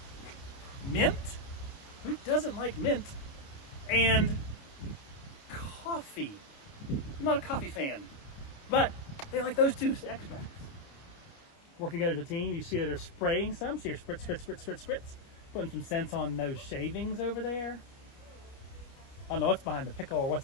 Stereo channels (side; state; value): right; late; 29 ms